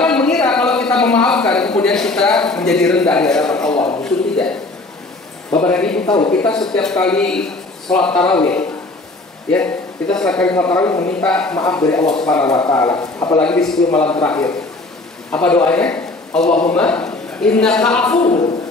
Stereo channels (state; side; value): quieter; right; 3.0 dB